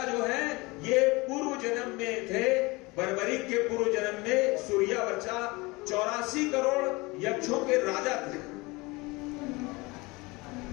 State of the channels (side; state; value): right; quieter; 24.2 dB